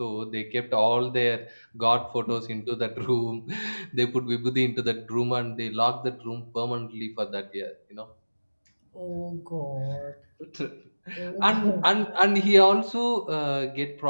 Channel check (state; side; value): inverted; both; correlation -1.00